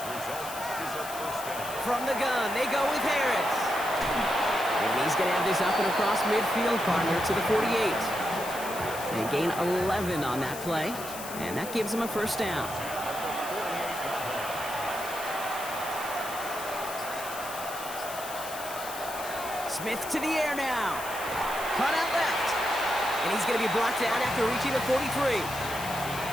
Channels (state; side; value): noise; left; hiss, 11 dB below the sound